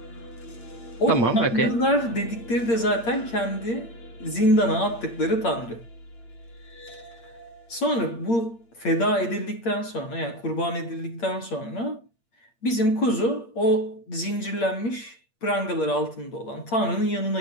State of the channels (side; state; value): right; late; 8.6 ms